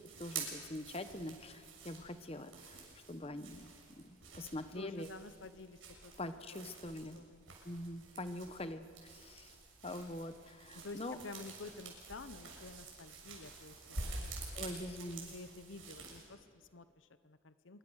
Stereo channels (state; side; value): normal; both; correlation 0.45